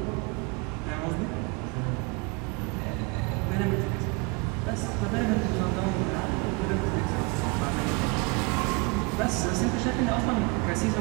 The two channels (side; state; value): left; quieter; 28.3 dB